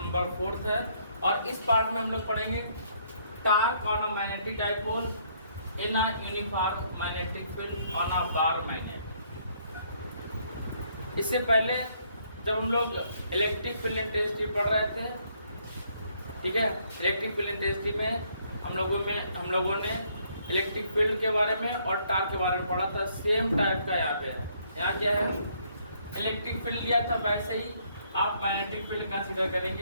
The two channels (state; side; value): inverted; both; correlation -0.68